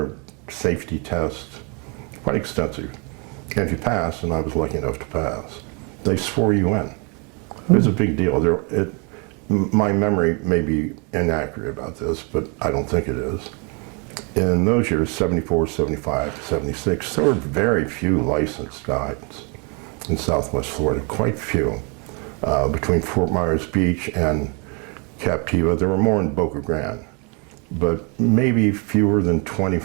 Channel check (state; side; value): quieter; left; 33.9 dB